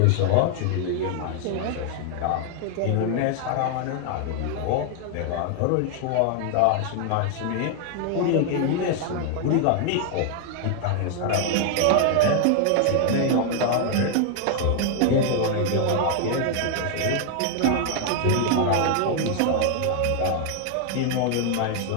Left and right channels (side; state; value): both; different; correlation 0.00